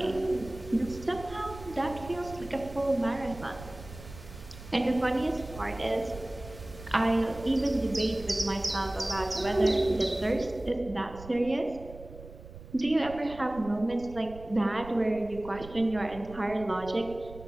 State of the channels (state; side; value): noise; right; rumble, 16 dB below the sound